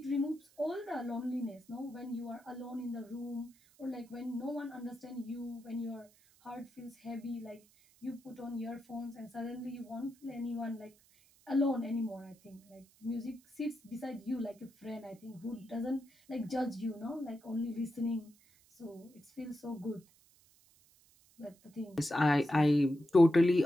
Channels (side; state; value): right; noise; hiss, 29 dB below the sound